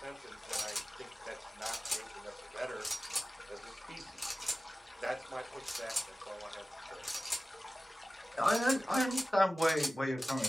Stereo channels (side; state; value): both; normal; correlation 0.96